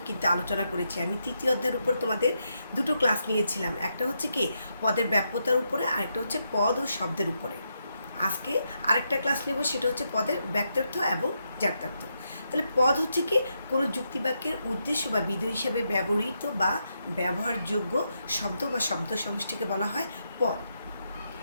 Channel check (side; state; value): both; inverted; correlation -0.82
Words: কিন্তু আলোচনা করেছি। আমি তৃতীয় অধ্যায়ের উপর তোমাদের দুটো ক্লাস নিয়েছিলাম, একটা হচ্ছে কি পদের ব্যাপ্যতার উপরে, আরেকটা হচ্ছে পদ ও শব্দের উপরে। আজকে আরেকটা ক্লাস নেব, সেটা হচ্ছে পদের ব্যক্তার্থ এবং জাত্যার্থ। তাহলে পদ হচ্ছে কি কোনো যুক্তিবাক্যের উদ্দেশ্য বা বিধেয় হিসেবে ব্যবহৃত বা ব্যবহারযোগ্য শব্দ বা শব্দ সমষ্টিকে বলা হয় পদ।